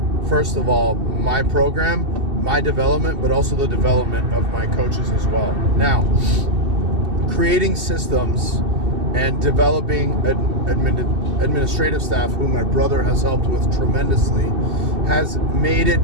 first of all, my program, my development, but also the development of my coaches as well. Now, creating systems and developing administrative staff, who my brother has helped with tremendously, has made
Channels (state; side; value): late; left; 2.6 ms